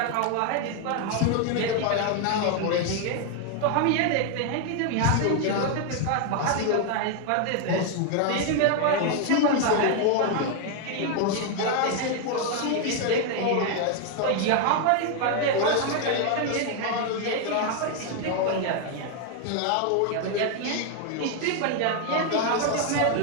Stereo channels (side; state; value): both; different; correlation 0.00